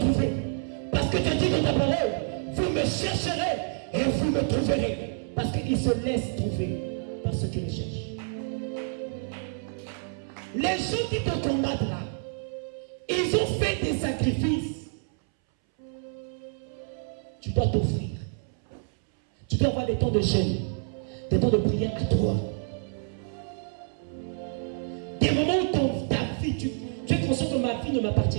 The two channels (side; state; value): left; silent; 59 dB below the other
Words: Parce que tu dis dans ta parole, vous me chercherez et vous me trouverez. Parce qu'il se laisse trouver par ceux qui le cherchent. Les gens qui te combattent là, ils ont fait des sacrifices. Tu dois t'offrir. Tu dois avoir des temps de jeûne, des temps de prière à toi. Des moments où ta vie, tu es conscient que ma vie ne m'appartient